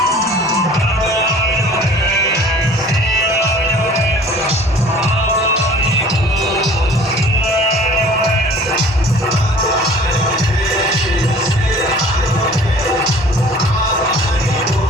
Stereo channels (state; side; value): normal; both; correlation 0.48